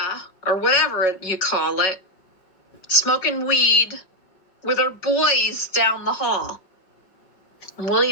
or whatever you call it, smoking weed with her boys down the hall. And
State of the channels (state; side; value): late; right; 5.3 ms